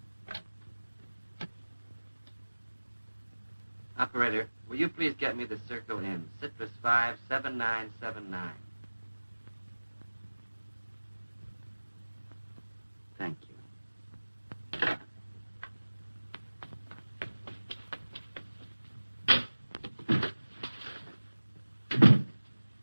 Operator, will you please get me the Circle Inn, Citrus 57979. Thank you.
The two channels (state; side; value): inverted; both; correlation -1.00